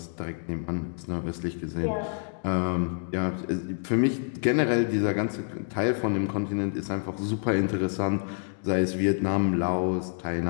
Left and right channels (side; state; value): right; silent; 60 dB below the other